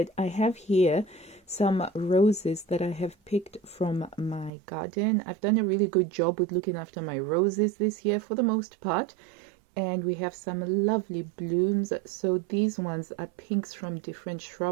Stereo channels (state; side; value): drops out; left; at 4.5 s